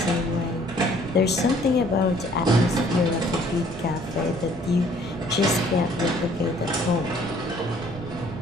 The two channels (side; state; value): right; noise; rumble, 16 dB below the sound